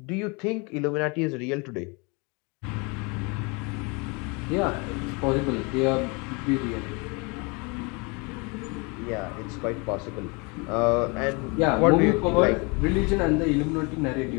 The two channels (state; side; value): quieter; right; 30.1 dB